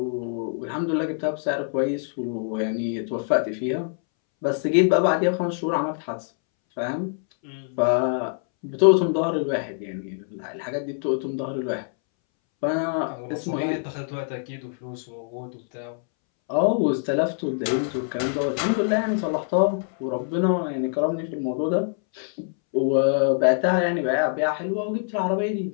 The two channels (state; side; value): silent; right; 62 dB below the other